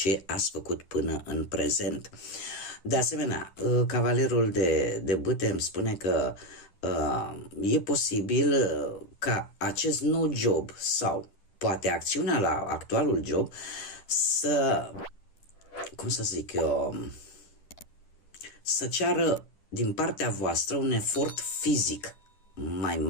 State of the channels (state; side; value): late; right; 10 ms